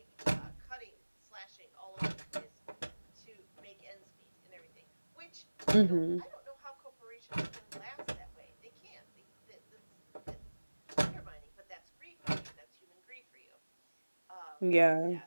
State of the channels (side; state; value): both; inverted; correlation -1.00